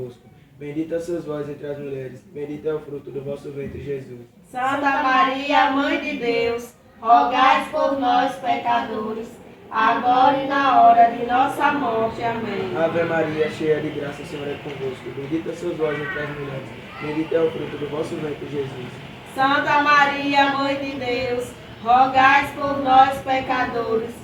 Bendita sois vós entre as mulheres, bendito é o fruto do vosso ventre, Jesus. Santa Maria, Mãe de Deus, rogai por nós, pecadores, agora e na hora de nossa morte. Amém. Ave Maria, cheia de graça, o Senhor é convosco. Bendita sois vós entre as mulheres, bendito é o fruto do vosso ventre, Jesus. Santa Maria, Mãe de Deus, rogai por nós, pecadores,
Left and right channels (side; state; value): both; identical; correlation 1.00